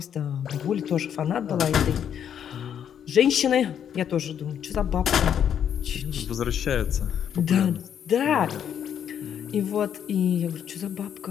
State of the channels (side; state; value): right; quieter; 8.9 dB